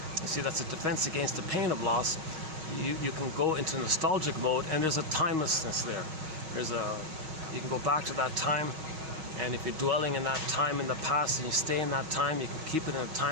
see, that's a defense against the pain of loss. You can go into nostalgic mode, and there's a timelessness there. You can go back to that time, and if you're dwelling in that time in the past and you stay in that time, you can keep it in a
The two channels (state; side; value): late; left; 6.3 ms